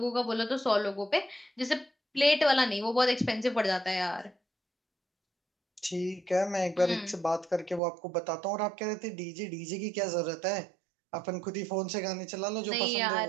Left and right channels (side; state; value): left; drops out; at 7.8 s